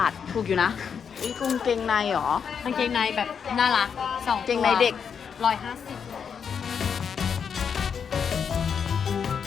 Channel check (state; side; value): quieter; right; 6.9 dB